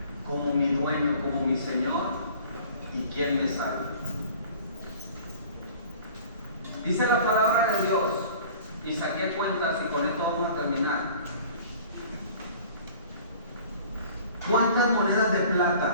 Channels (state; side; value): inverted; both; correlation -0.46